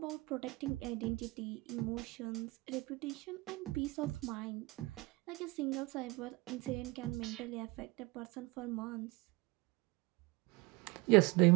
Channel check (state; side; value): quieter; left; 23.5 dB